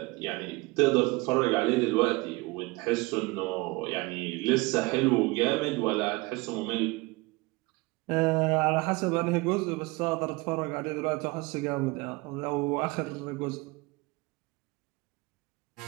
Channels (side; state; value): left; quieter; 24.0 dB